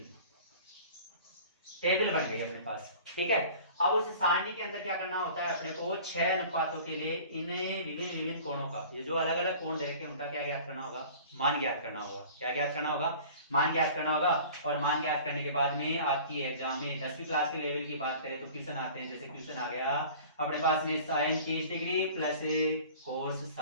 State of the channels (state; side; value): inverted; both; correlation -0.44